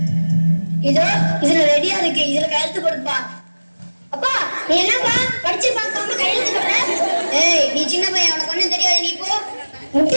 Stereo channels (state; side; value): inverted; both; correlation -1.00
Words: இதோ இதுல ரெடியா இருக்கு, இதுல கையெழுத்து கொடுப்பா. அப்பா நீ என்னப்பா படிச்சு பார்க்காம கையெழுத்து போடுற? ஏய் நீ சின்ன பையன், உனக்கு ஒண்ணும் தெரியாது, நீ போ.